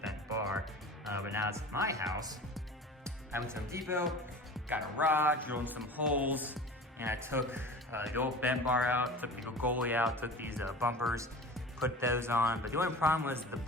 bar. But now it's my house. I went to Home Depot, got a rod, drilled some holes, and I took the old bent bar out, took the goalie out, took these bumpers, put those on. But the only problem was the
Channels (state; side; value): normal; both; correlation 0.37